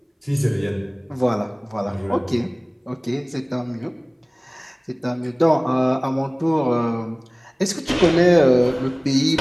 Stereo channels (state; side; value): identical; both; correlation 1.00